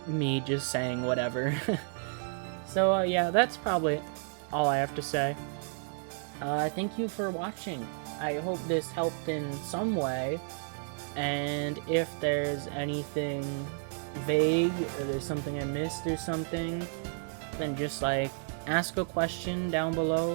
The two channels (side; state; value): left; silent; 57 dB below the other